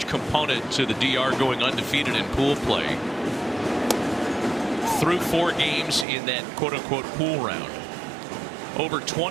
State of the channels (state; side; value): drops out; left; at 6.1 s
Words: component to the DR going undefeated in pool play through 4 games in that quote-unquote pool round. Over